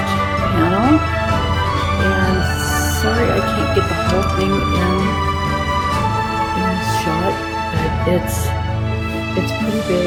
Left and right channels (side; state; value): both; identical; correlation 1.00